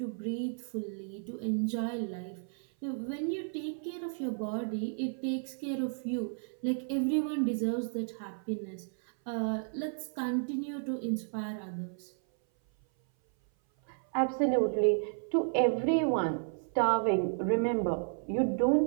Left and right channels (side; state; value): left; silent; 56 dB below the other